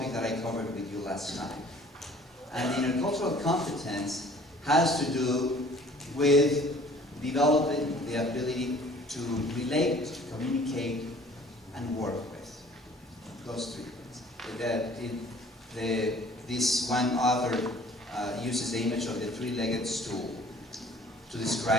that I covered with you last time. And intercultural competence has to do with developing the ability to relate, communicate, and work with. Those three things. This one author uses the image of the three-legged stool to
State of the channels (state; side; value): normal; both; correlation 0.52